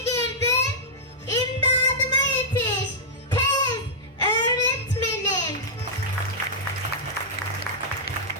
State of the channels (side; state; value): both; normal; correlation -0.11